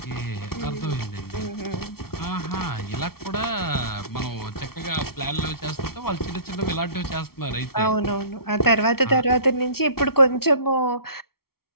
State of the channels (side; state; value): right; late; 0.94 ms